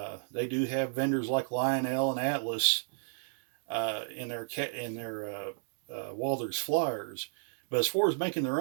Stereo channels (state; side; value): silent; left; digital silence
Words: They do have vendors like Lionel and Atlas in their Walthers flyers, but as far as making their